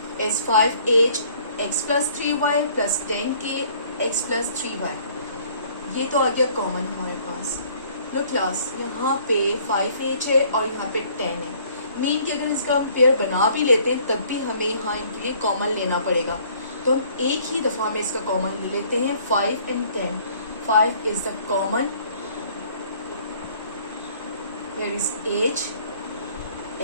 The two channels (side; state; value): both; inverted; correlation -0.58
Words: is 5h x plus 3y plus 10k x plus 3y. ये तो आ गया common हमारे पास. लो class, यहाँ पे 5h है और यहाँ पे 10 है. मीन कि अगर इसका हम पेयर बना भी लेते हैं तब भी हमें यहाँ इनके लिए कॉमन लेना पड़ेगा. तो हम एक ही दफ़ा में इसका कॉमन ले लेते हैं 5 and 10. 5 is the common. Here is h